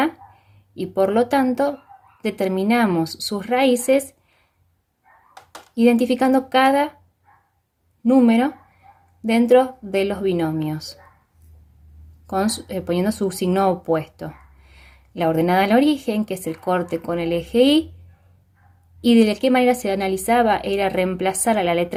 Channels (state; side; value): identical; both; correlation 1.00